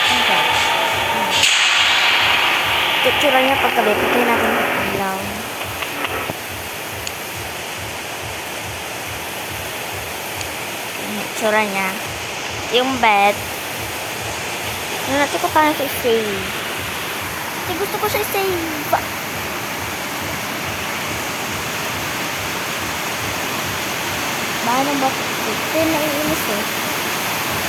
Itsura niya paggabi. Pagkain natin yung ilaw. Itsura niya. Yung bed. Ano natin ko paano siya i-save. Kasi gusto ko siya i-save. Paano ba? Ito yung naiinis eh.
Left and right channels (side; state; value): both; identical; correlation 1.00